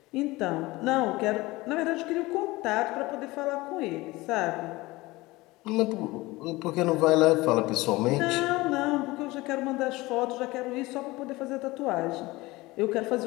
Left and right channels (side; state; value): right; quieter; 20.7 dB